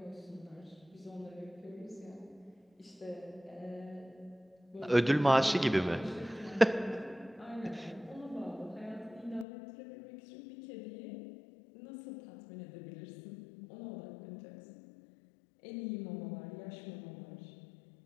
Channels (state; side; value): drops out; right; at 9.5 s